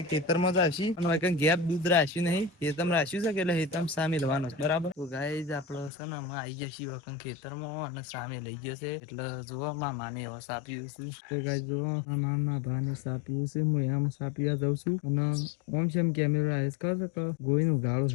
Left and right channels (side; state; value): right; drops out; at 5.9 s